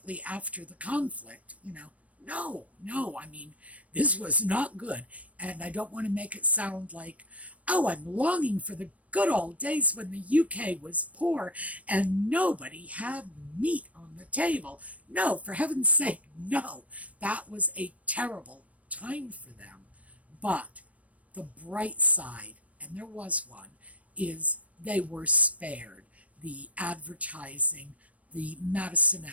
after the conflict. No, I mean, this was not good. And I don't want to make it sound like, oh, I'm longing for the good old days when the UK was poor and nobody had meat on the table. No, for heaven's sake, no. That was a terrible time for them. But the bright side, and there was one, is they were spared the advertising, the Madison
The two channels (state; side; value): late; left; 0.066 ms